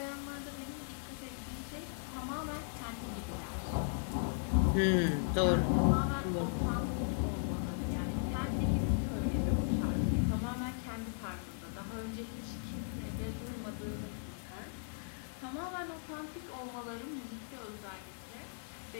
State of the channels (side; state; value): right; silent; digital silence